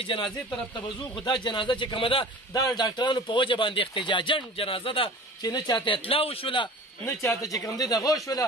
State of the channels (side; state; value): both; normal; correlation 0.40